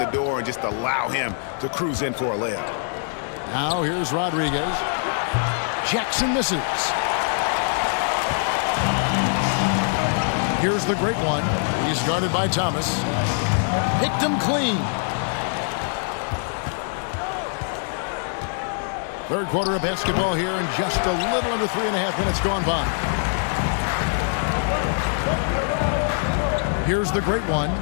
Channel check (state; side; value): silent; right; 63 dB below the other